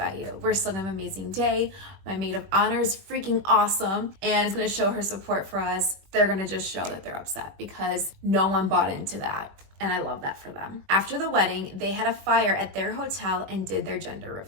you. We're still going to have an amazing day. My maid of honor is freaking awesome and is going to show her support for us. They're going to just show that they're upset because no one bought into that. And I love that for them. After the wedding, they had a fire at their hotel and did their gender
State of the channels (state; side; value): late; left; 21 ms